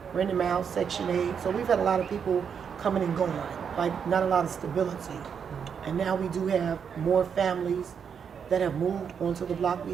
renting them out, Section 8. So we've had a lot of people coming and going, like not a lot of stability. And now we do have more families that have moved onto the block.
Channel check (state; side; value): quieter; left; 7.1 dB